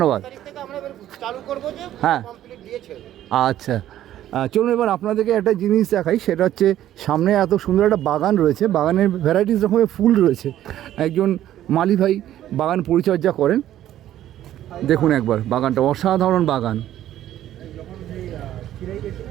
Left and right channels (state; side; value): quieter; left; 12.4 dB